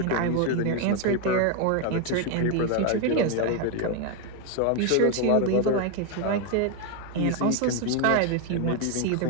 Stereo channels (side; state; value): both; different; correlation 0.01